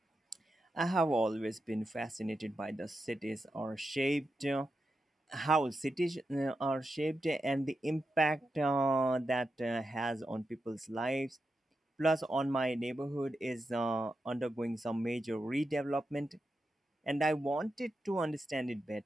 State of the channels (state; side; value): normal; both; correlation 0.88